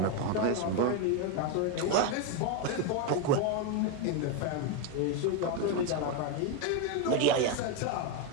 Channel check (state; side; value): different; both; correlation 0.02